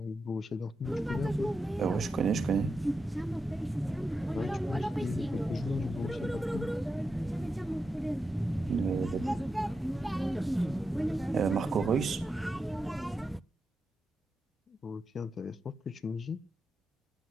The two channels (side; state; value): both; normal; correlation 0.88